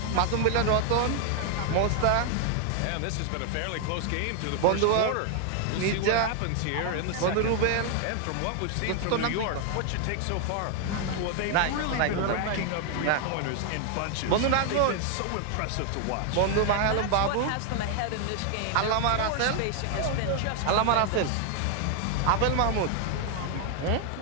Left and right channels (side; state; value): both; different; correlation 0.00